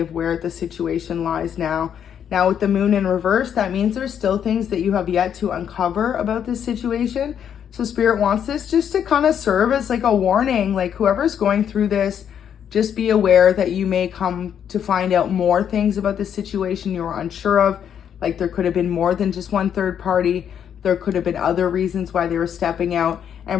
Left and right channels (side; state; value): right; quieter; 8.7 dB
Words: where the situation lies now. Now with the moon in reverse, that means there's still things that you have yet to uncover about this situation. So Spirit wants this just to kind of serve as like a warning, like whoever's going through this, just be aware that you may come to find out more things about the situation you were unsure of. Like there could have been more than just one third party. There could have been other reasons why they were stepping out.